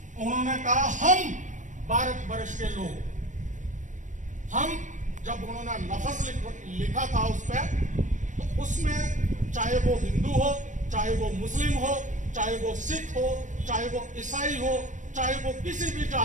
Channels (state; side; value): late; left; 0.36 ms